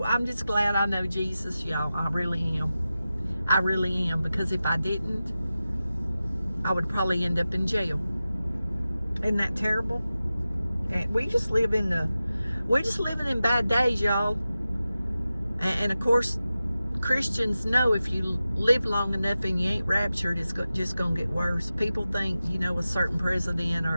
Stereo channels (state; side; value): inverted; both; correlation -0.94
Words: I'm just glad I know Jesus, y'all. I really am. I really am, because if I didn't, I would probably end up in jail. Isn't that terrible? And we're just living in bad days, y'all. And of course, Christians know if you live long enough and you ain't raptured, it's just going to get worse. People think, a certain president